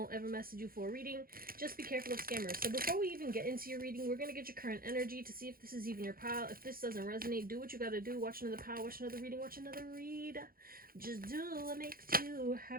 ever message you for a reading. Just be careful of scammers. So before we even get into your reading, we're going to get your current energy to see if this is even your pile. If this doesn't resonate, do what you got to do. Watch another pile, watch another reading, watch another read. Just do what makes you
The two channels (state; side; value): late; left; 0.42 ms